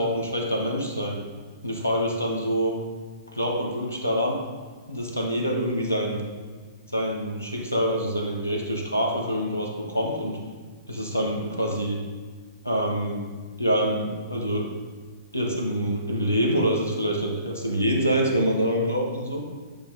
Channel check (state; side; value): inverted; both; correlation -0.58